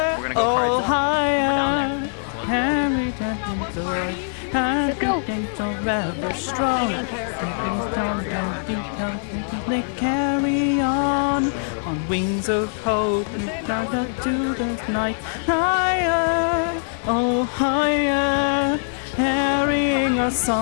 oh higher. Carry that joy, let's go. Rather strong. They carry on wings of hope. Down to the night, higher, oh higher. Carrying a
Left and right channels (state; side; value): silent; right; 59 dB below the other